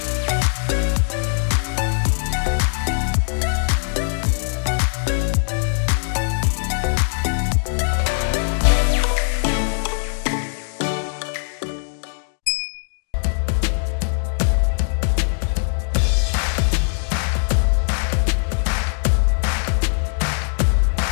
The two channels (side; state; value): right; silent; digital silence